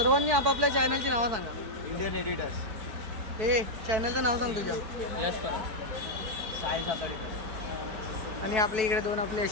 आपापल्या चॅनलची नावं सांगा. Indian editors. हे चॅनलचं नाव सांग तुझ्या. यश परब, साई साताडे. आणि आपल्या इकडे 2 आपले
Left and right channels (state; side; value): late; left; 4.6 ms